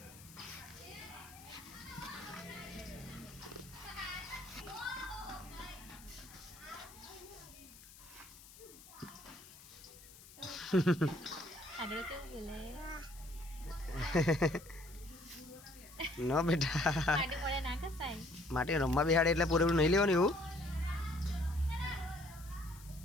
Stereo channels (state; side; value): noise; left; hiss, 19 dB below the sound